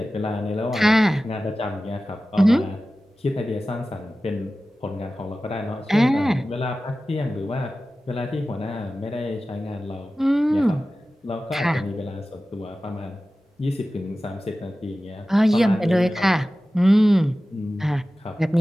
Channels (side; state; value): both; normal; correlation 0.95